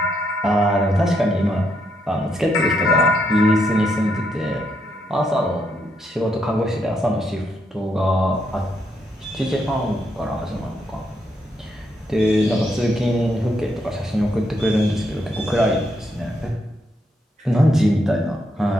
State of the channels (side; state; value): both; normal; correlation 0.78